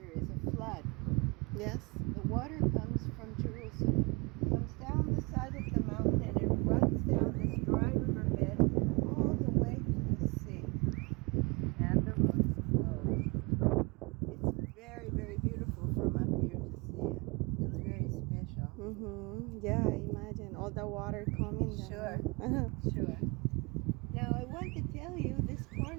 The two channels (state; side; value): quieter; left; 29.1 dB